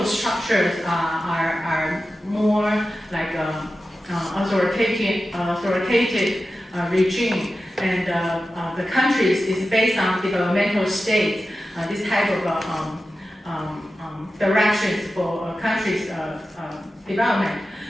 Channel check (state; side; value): normal; both; correlation 0.93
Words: structures are more like authoritative regime, and the countries is based on developmental states, this type of directions for countries' development.